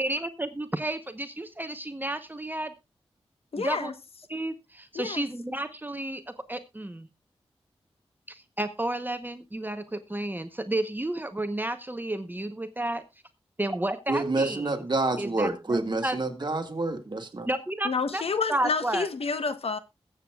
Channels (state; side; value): normal; both; correlation 0.62